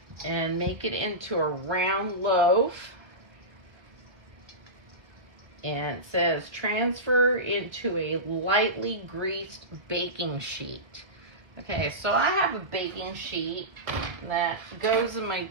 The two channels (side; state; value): left; late; 1.5 ms